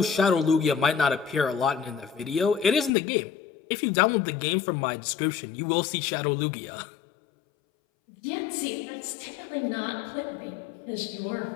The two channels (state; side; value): drops out; right; at 2.9 s